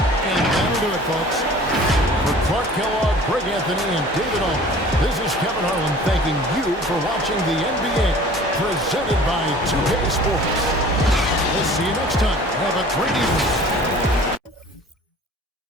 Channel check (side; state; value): both; normal; correlation 0.47